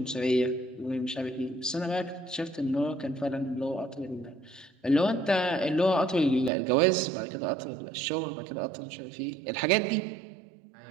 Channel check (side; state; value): left; drops out; at 6.5 s